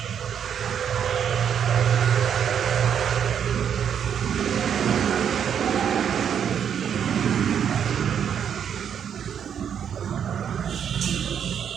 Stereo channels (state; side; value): quieter; left; 8.3 dB